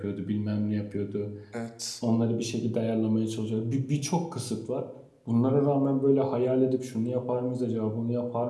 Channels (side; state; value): both; identical; correlation 1.00